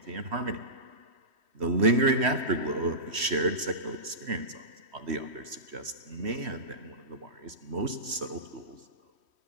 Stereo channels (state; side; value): late; left; 3.1 ms